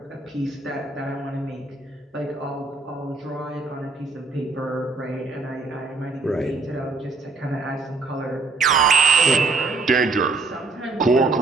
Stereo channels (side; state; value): left; quieter; 4.0 dB